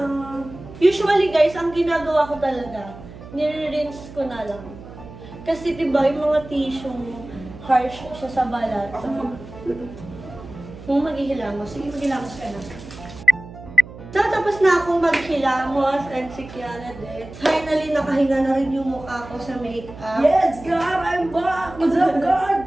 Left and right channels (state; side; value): noise; right; hum, 16 dB below the sound